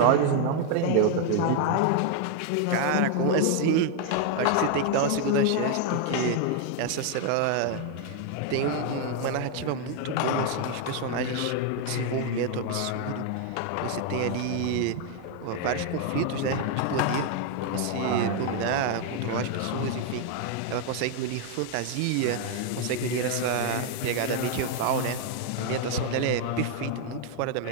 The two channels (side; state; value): both; different; correlation 0.01